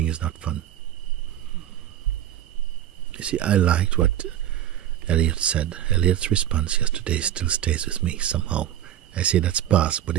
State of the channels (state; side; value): quieter; left; 11.7 dB